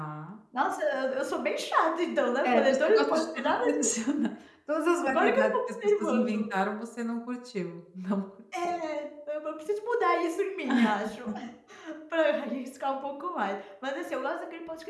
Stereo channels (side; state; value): both; identical; correlation 1.00